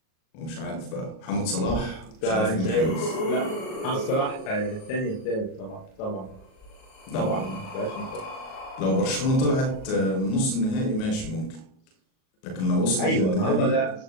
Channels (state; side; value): late; right; 37 ms